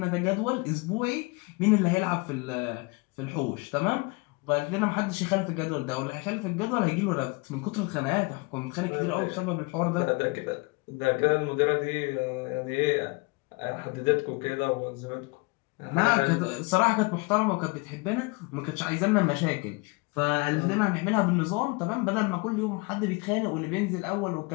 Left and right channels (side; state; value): right; quieter; 27.6 dB